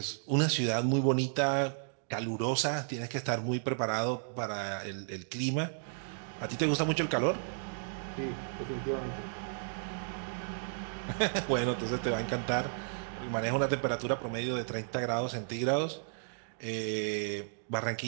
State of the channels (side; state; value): left; silent; digital silence